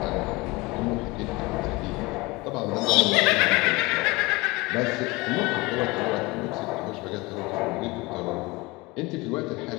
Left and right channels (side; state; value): right; quieter; 23.3 dB